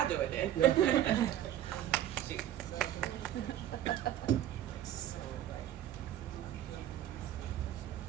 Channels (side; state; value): left; quieter; 11.9 dB